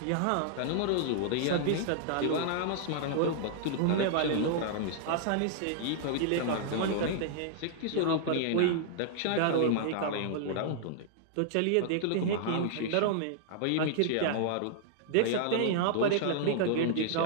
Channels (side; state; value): both; different; correlation -0.01